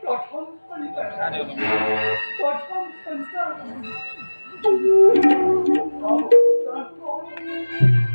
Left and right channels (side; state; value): both; inverted; correlation -1.00